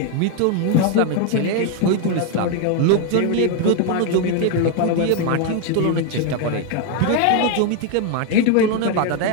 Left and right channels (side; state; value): both; different; correlation 0.01